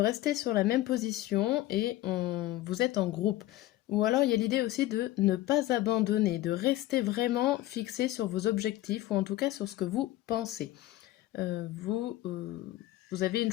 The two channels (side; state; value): right; quieter; 15.5 dB